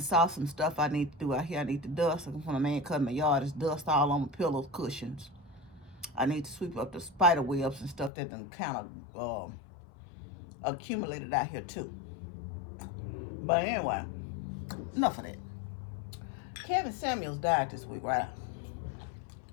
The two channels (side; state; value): right; drops out; at 8.1 s